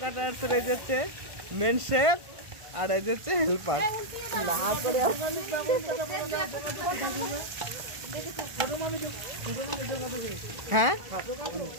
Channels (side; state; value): left; late; 1.5 ms